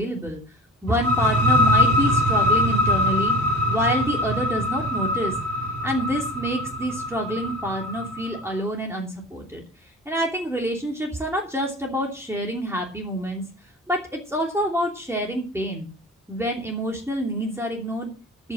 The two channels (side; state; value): both; normal; correlation 0.37